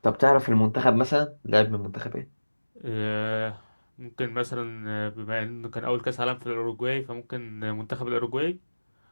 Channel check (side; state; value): both; inverted; correlation -1.00